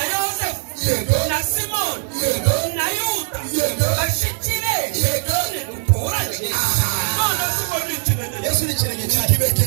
Yosefu Yego. na Simoni Yego. na Yuda Yego. bashiki be Yego. ntiduturanye. None si ngo ni ikinege. Yesu ni ikirenge cyane.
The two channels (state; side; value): silent; left; digital silence